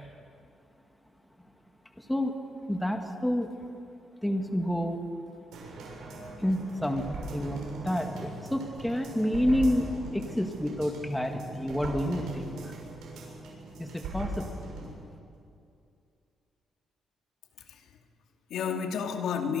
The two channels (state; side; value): normal; both; correlation 0.89